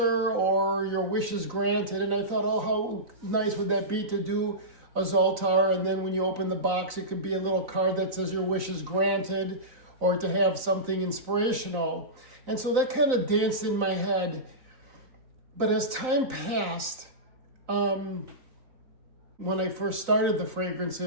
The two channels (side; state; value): left; late; 3.9 ms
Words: or your wish is granted. And I thought, oh, how nice would that be to do a Zoltar, and then when you open the box, it could be a little card that says your wish is granted, or to have something inspirational. And so that kind of danced in my head. But as time passed, when I first started the